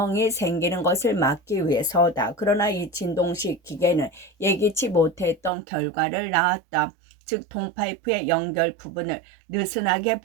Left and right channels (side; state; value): left; drops out; at 5.5 s